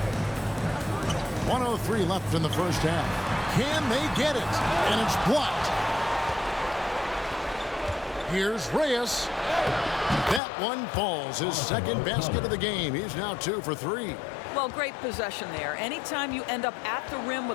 1:03 left in the first half. Can they get it? And it's blocked. Here's Reyes. That one falls. His second basket of the game. He's now 2 for 3. Well, great possession there. Anytime you end up at the rim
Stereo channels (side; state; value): right; drops out; at 10.4 s